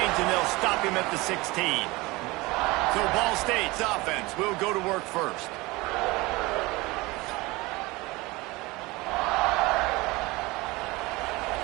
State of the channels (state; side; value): quieter; left; 22.4 dB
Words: and they'll stop him at the 16. So Ball State's offense will go to work first.